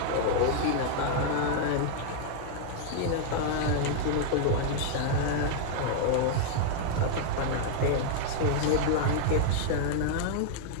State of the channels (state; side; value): different; both; correlation -0.01